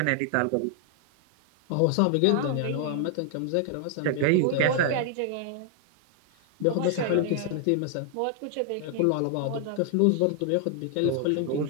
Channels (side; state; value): both; different; correlation 0.00